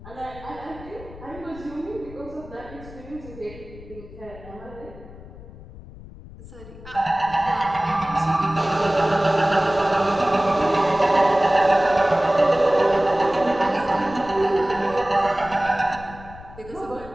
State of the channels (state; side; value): noise; left; rumble, 17 dB below the sound